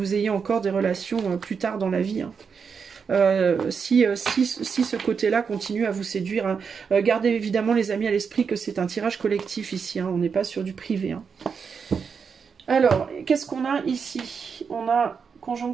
ayez encore des relations plus tard dans la vie. Hein. Si ce côté-là continue à vous séduire, hein. Gardez évidemment les amis à l'esprit que c'est un tirage collectif ici, hein. On n'est pas sur du privé. Hein. Alors, qu'est-ce qu'on a ici? On a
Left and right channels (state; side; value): quieter; left; 6.1 dB